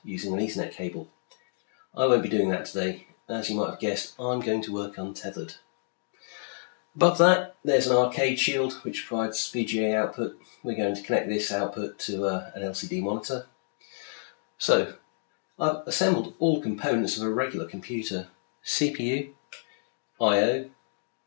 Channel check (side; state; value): right; silent; digital silence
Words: using an Ethernet cable. I won't be doing that today. As you might have guessed, I'm going to work untethered. Above that, there's an arcade shield which provides VGA output. We're going to connect this output to an LCD monitor. So, I've assembled all components of a regular computer: CPU, I/O